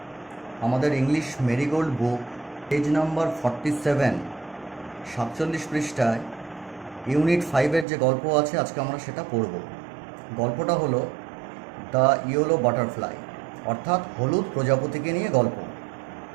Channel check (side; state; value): left; drops out; at 7.9 s